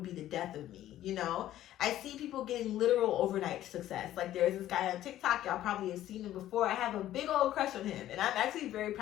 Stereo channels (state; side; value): quieter; right; 13.2 dB